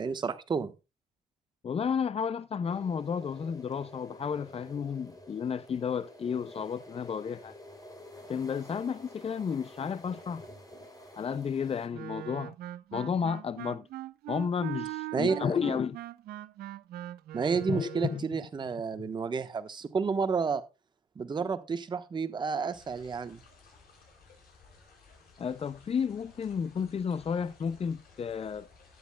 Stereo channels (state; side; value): normal; both; correlation 0.65